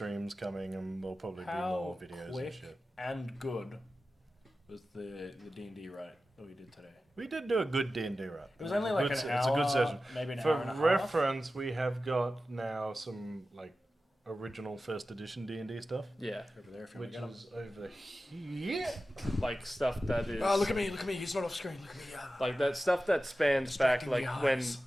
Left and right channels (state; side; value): normal; both; correlation 0.94